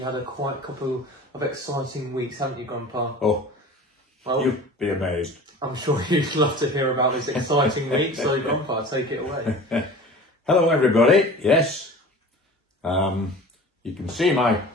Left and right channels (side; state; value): both; normal; correlation 0.39